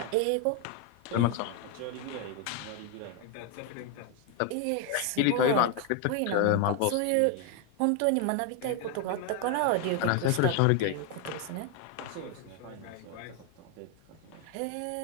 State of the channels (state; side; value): different; both; correlation 0.01